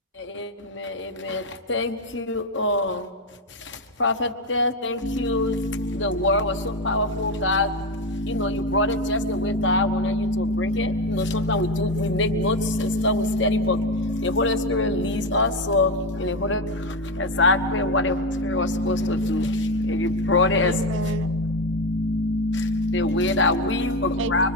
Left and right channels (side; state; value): both; normal; correlation 0.13